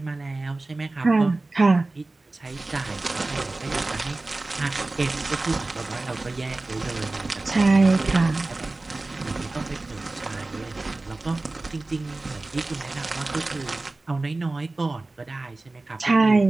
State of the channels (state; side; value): quieter; left; 3.1 dB